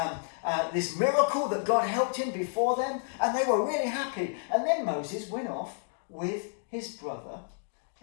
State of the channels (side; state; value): right; silent; digital silence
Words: miracle that God helped him before them, and they were really happy. And then Moses went off with his brother